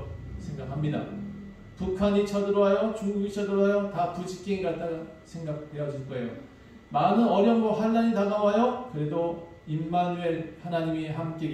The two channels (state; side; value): identical; both; correlation 1.00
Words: 생각합니다. 북한이 쳐들어와요. 중국이 쳐들어와요. 다 부직갱이 같다가 생각되어질 거예요. 많은 어려움과 환난이 다가와요. 그래도 임마누엘 하나님이 함께